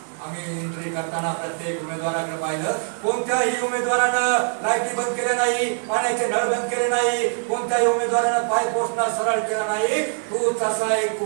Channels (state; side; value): silent; left; 58 dB below the other